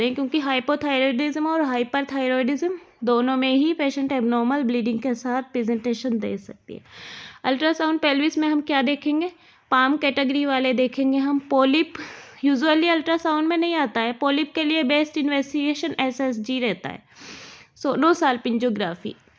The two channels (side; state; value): both; identical; correlation 1.00